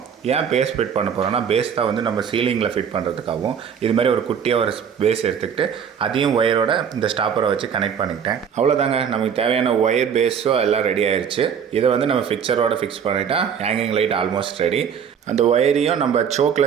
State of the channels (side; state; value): left; quieter; 7.6 dB